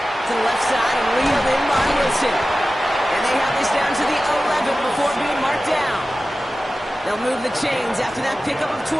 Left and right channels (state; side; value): normal; both; correlation 0.95